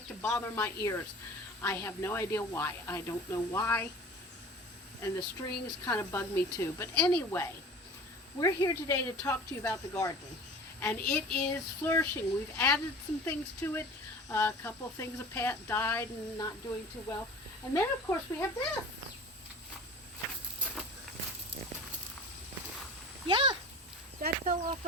to bother my ears. I have no idea why. I don't know why. And the strings kind of bug me too. But anyway, we're here today to talk to you about the garden. And it is flourishing. We've added some things to it. A couple of things have died and not doing too well. And then, of course, we have this. Yeah, that fell off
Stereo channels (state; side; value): normal; both; correlation 0.40